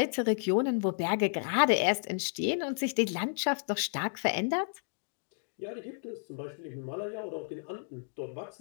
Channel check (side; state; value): right; silent; digital silence